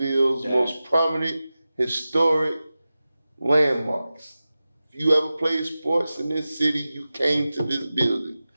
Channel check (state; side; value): inverted; both; correlation -0.95